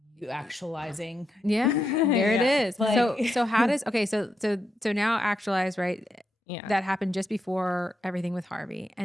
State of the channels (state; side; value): normal; both; correlation 0.84